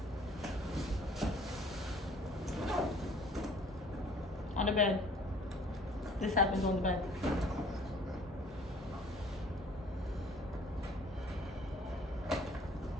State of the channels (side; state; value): both; normal; correlation 0.54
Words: On the bed. This happens on the bed.